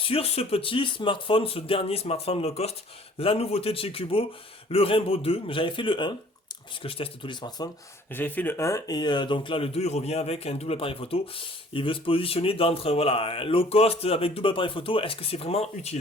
ce petit smartphone, ce dernier smartphone low cost. La nouveauté de chez Cubo, le Rainbow 2. J'avais fait le 1, puisque je teste tous les smartphones. J'avais fait le 1 et donc là le 2 il revient avec un double appareil photo. Il veut se positionner d'entre voilà, low cost avec double appareil photo. Est-ce que c'est vraiment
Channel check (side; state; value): both; normal; correlation 0.54